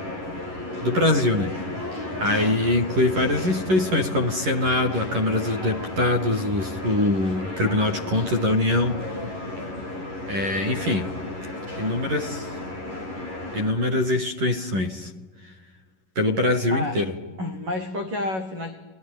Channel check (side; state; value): left; late; 11 ms